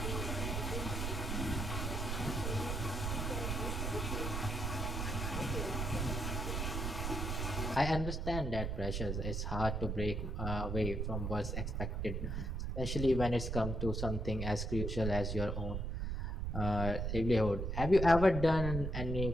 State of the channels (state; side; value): noise; right; rumble, 2 dB below the sound